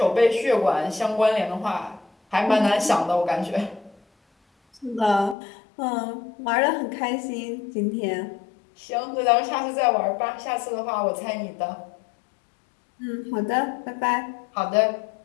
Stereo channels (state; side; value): drops out; right; at 5.4 s